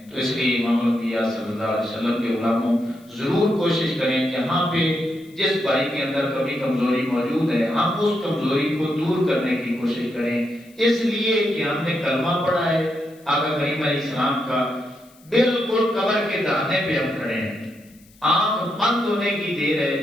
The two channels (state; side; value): noise; left; hiss, 29 dB below the sound